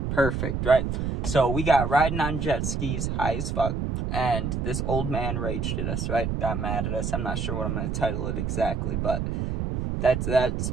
Perfect, right? So we got riding on jet skis, high as fuck. And this old man raged at us, right? Got mad at us. I'm not sure what I'm going to title it exactly, but that's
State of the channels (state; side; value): noise; right; rumble, 1 dB below the sound